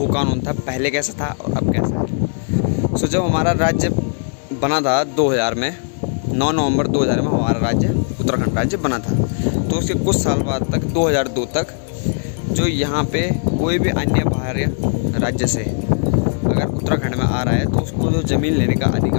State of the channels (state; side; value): silent; right; 67 dB below the other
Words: कानून था पहले कैसा था और अब कैसा है। जब हमारा राज्य बना था 2000 में, 9 नवंबर 2000 में हमारा राज्य उत्तराखंड राज्य बना था। तो उसके कुछ साल बाद तक 2002 तक जो यहाँ पे कोई भी अन्य बाहरी राज्य से अगर उत्तराखंड में आ रहा है तो उसको जो ज़मीन लेने का